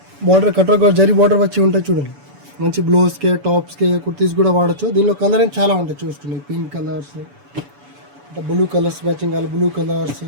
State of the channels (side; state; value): left; late; 7.0 ms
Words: బార్డర్ కట్రా జరీ బార్డర్ వచ్చి ఉంటాయి. చూడండి, మంచి బ్లౌజ్కి టాప్స్కి కుర్తీస్ కూడా వాడచ్చు. దీనిలో కలరింగ్ చాలా ఉంటాయి. చూస్తున్నాయి pink colours, blue colours matching కావాలి, blue colours,